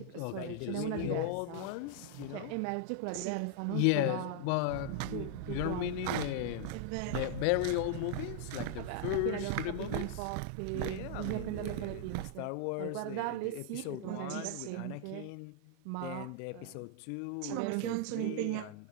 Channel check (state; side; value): different; both; correlation -0.01